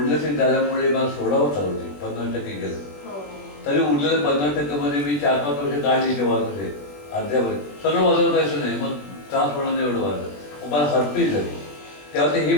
झाल्यामुळे मला सोडावं चालू होते 50% गेलं. तरी उरलेलं 50% मी 4-5 वर्ष काढली ते वाजवते अर्ध्यावर सगळं वाजवतायचं नाही. मग त्रास होणार नाही एवढं वाजलं मला हरपीच झाली. तेव्हा ते हे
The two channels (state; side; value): late; right; 20 ms